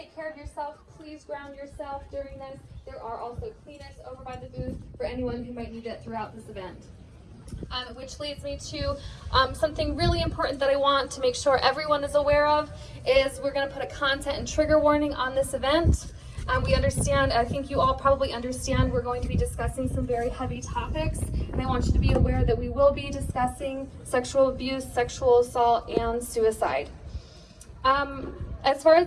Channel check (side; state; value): both; identical; correlation 1.00